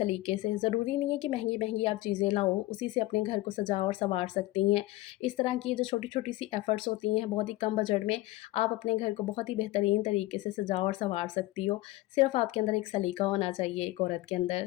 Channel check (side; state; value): right; quieter; 18.0 dB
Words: से। ज़रूरी नहीं है कि महँगी-महँगी आप चीज़ें लाओ, उसी से अपने घर को सजा और सँवार सकती हैं। इस तरह की ये जो छोटी-छोटी सी एफ़र्ट्स होती हैं, बहुत ही कम बजट में आप अपने घर को बहुत ही बेहतरीन तरीके से सजा और सँवार सकती हो। सिर्फ़ आपके अंदर एक सलीका होना चाहिए एक औरत के